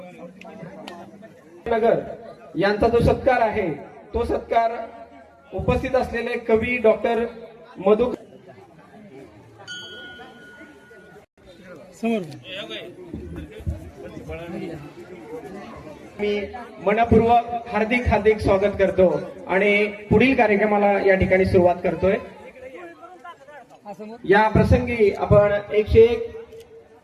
नगर यांचा जो सत्कार आहे तो सत्कार उपस्थित असलेले कवी डॉक्टर मधु मी मनपूर्वक हार्दिक स्वागत करतो आणि पुढील कार्यक्रमाला या ठिकाणी सुरुवात करतोय. या प्रसंगी आपण 101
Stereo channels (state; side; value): identical; both; correlation 1.00